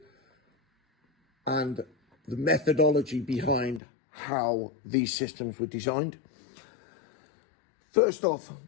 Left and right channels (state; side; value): drops out; right; at 3.8 s